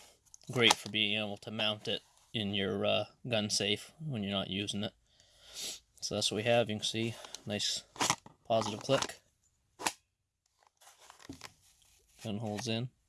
Great for being able to mount it in your gun safe when you're not using it. So that's what we have. You can see nice positive click. Gun holds in.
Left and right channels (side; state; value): both; identical; correlation 1.00